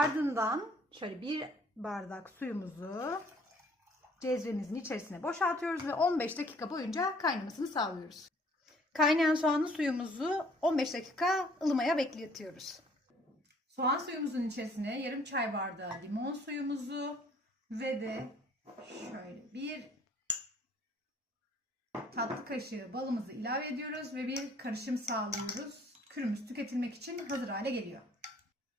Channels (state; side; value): normal; both; correlation 0.58